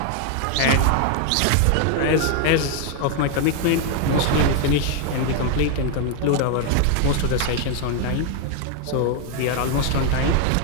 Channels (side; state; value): both; different; correlation 0.01